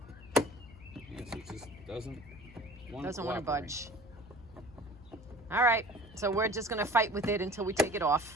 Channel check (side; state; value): left; noise; hum, 20 dB below the sound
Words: Yes, it just doesn't want to budge. All right, so we're just gonna fight with it until we take it